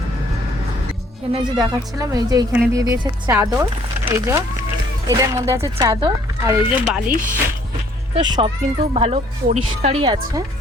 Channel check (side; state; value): both; normal; correlation 0.61